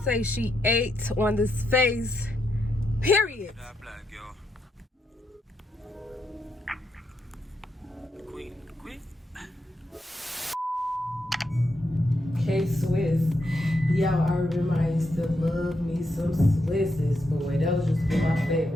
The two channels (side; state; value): both; normal; correlation 0.81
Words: say she ate on this face, period. Kswiss. Yo, I remember I used to love me some Swisses, boy. That was just my